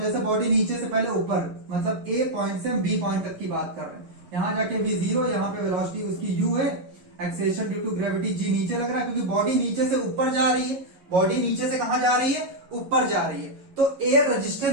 जैसे बॉडी नीचे से पहले ऊपर, मतलब ए पॉइंट से हम बी पॉइंट तक की बात कर रहे हैं, यहां जाके v0, यहां पे वेलोसिटी उसकी u है, acceleration due to gravity g नीचे लग रहा है क्योंकि बॉडी नीचे से ऊपर जा रही है। बॉडी नीचे से कहां जा रही है, ऊपर जा रही है, तो एयर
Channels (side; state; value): left; late; 11 ms